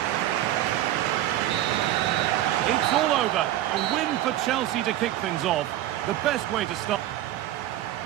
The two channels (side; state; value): left; quieter; 13.5 dB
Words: It's all over. A win for Chelsea to kick things off. The best way to start.